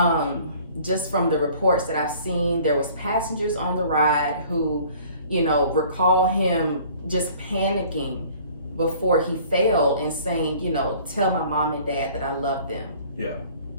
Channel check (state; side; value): inverted; both; correlation -0.52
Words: Just from the reports that I've seen, there was passengers on the ride who, recall him just panicking before he fell and saying, tell my mom and dad that I love them. Yeah.